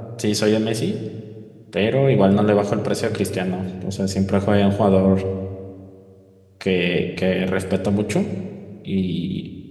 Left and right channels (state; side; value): identical; both; correlation 1.00